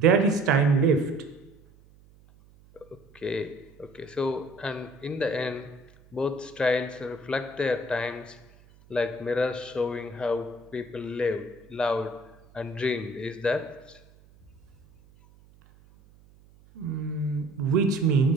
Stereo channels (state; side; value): noise; right; hum, 27 dB below the sound